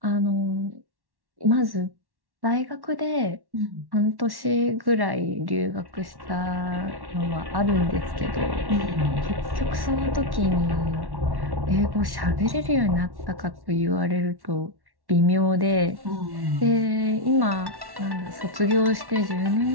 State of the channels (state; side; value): late; left; 1.1 ms